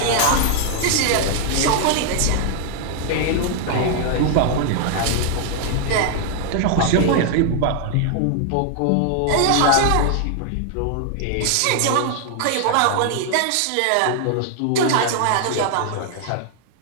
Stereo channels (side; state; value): both; different; correlation 0.00